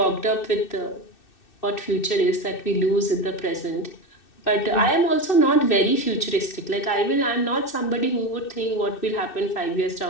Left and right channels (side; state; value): right; late; 2.6 ms